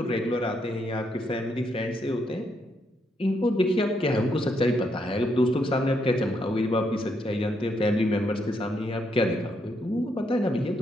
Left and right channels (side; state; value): both; normal; correlation 0.77